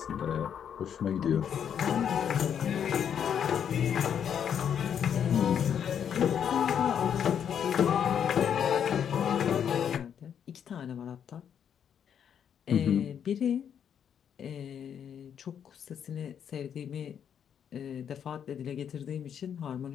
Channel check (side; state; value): right; quieter; 8.4 dB